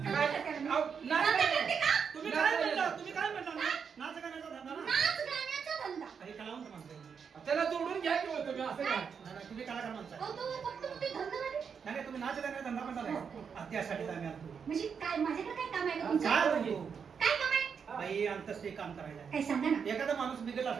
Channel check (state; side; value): quieter; left; 6.5 dB